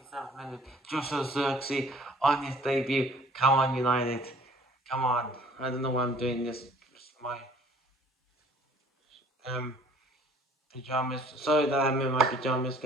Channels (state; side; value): normal; both; correlation 0.54